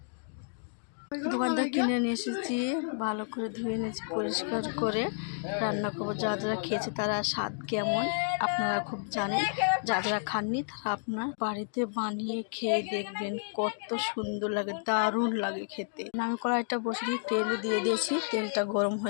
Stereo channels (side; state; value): right; silent; digital silence